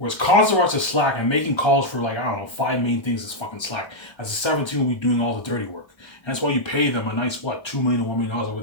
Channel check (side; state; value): right; late; 1.3 ms